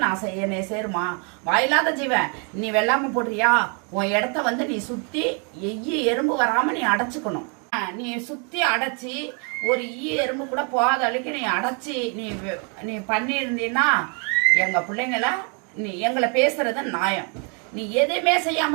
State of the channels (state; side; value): quieter; left; 37.1 dB